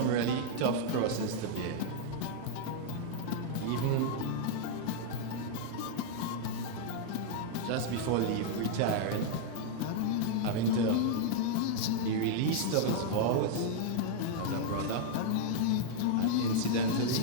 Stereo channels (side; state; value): both; different; correlation -0.01